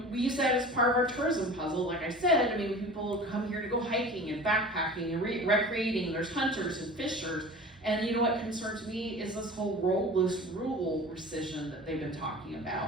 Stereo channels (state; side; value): normal; both; correlation 0.39